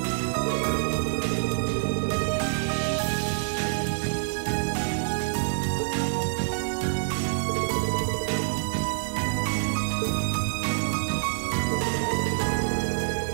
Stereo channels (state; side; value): silent; left; 60 dB below the other